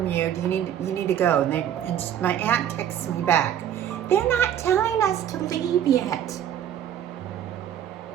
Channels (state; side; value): quieter; left; 10.1 dB